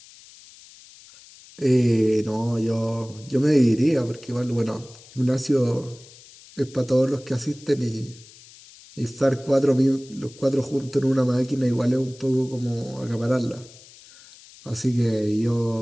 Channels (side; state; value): left; noise; hiss, 22 dB below the sound